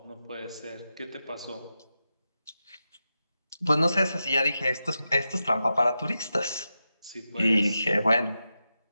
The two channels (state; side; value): inverted; both; correlation -0.90